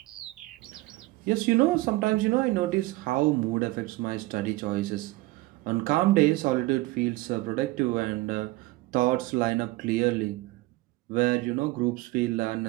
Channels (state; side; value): quieter; left; 19.7 dB